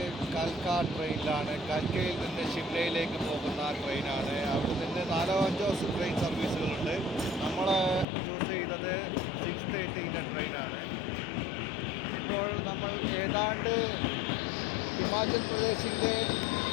കൽക്ക ട്രെയിനിലാണ്. കൽക്കയിൽ നിന്ന് ഷിംലയിലേക്ക് പോകുന്ന ട്രെയിനാണ്. അവിടെ നിന്ന് 4-5 ട്രെയിൻ സർവീസുകളുണ്ട്. നമ്മൾ ചൂസ് ചെയ്തത് 6:30 ട്രെയിനാണ്. ഇപ്പോൾ നമ്മൾ ഏതാണ്ട് ഹിമാചൽ പ്രദേശിൻ്റെ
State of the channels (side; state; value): right; drops out; at 8.1 s